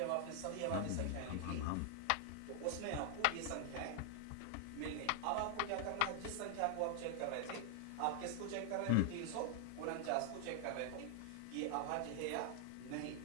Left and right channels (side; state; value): both; different; correlation 0.00